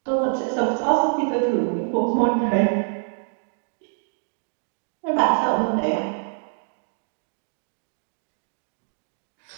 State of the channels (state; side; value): silent; left; digital silence